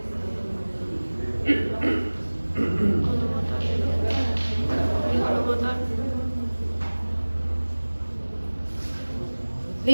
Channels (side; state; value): both; inverted; correlation -1.00